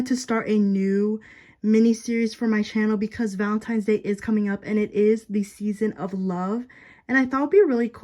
to start a new mini series for my channel because Valentine's Day is coming up and it is the season of love. And I thought it would be a really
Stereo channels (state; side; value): identical; both; correlation 1.00